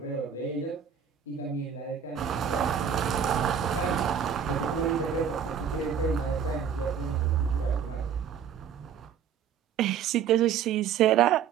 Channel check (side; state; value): left; quieter; 8.0 dB